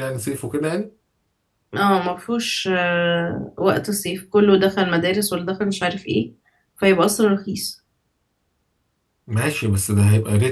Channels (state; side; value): identical; both; correlation 1.00